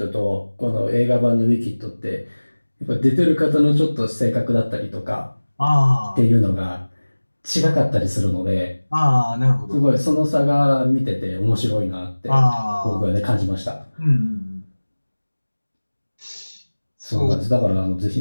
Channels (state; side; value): inverted; both; correlation -1.00